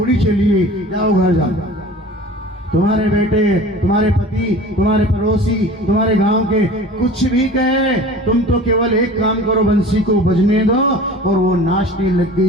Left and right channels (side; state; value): both; normal; correlation 0.41